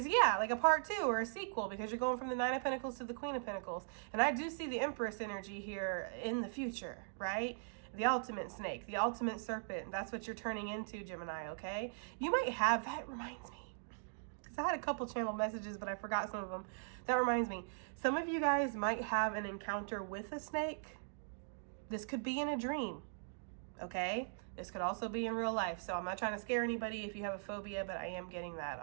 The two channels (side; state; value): left; silent; digital silence